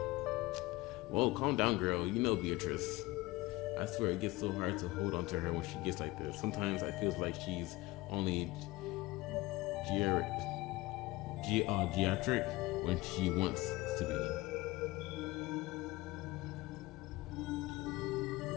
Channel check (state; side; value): quieter; right; 20.1 dB